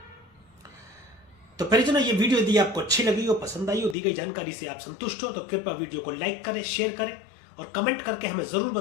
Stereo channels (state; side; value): drops out; right; at 4.0 s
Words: तो परिजनों, ये वीडियो यदि आपको अच्छी लगी हो, पसंद आई हो, दी गई जानकारी से आप संतुष्ट हो, तो कृपया वीडियो को लाइक करें, शेयर करें और कमेंट करके हमें जरूर